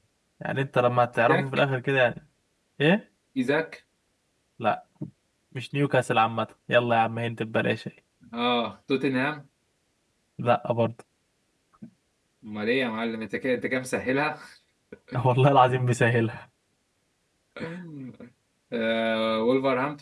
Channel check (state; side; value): identical; both; correlation 1.00